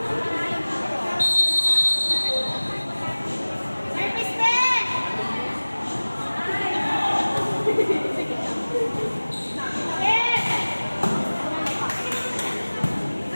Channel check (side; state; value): both; inverted; correlation -1.00